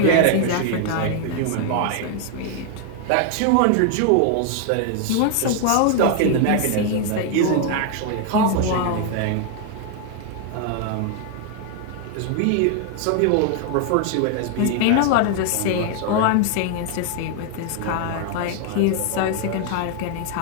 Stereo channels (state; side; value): different; both; correlation 0.00